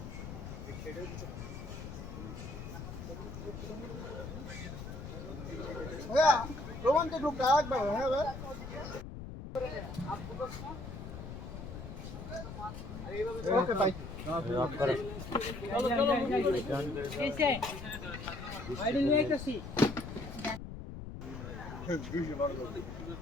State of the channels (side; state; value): left; noise; rumble, 9 dB below the sound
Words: হ্যাঁ রোমান্টিক গ্রুপটা একবার হ্যাঁ ভাই ওকে ভাই আপ করে চলো कैसे आईडी নিয়ে আসি দুইশো বার করতে